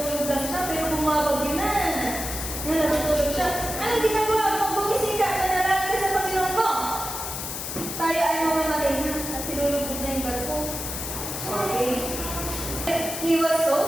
lang siya, pero bumabagyo na. Yan, nasutulog siya. Anong ginagawa mo? Bumising ka, manalangin ka sa Panginoon mo. Tayo ay mamamatay na, at sinulugod na yung barko. Okay. He was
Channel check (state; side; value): noise; left; hiss, 5 dB below the sound